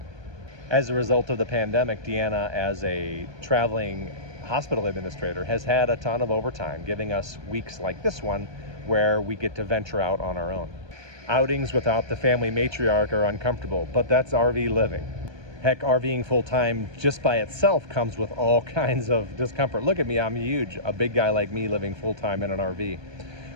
As a result of the pandemic, Deanna, as a traveling hospital administrator, has had a ton of overtime, giving us weeks like this one where we get to venture out on our own. Outings without the family matriarch are uncomfortable, but that's RV living. Heck, RVing full-time just by itself comes with all kinds of discomfort. Look at me, I'm huge, a big guy like me living full-time in an RV.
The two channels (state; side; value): late; left; 1.2 ms